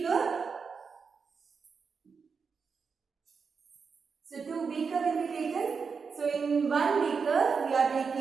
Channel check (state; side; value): quieter; left; 5.5 dB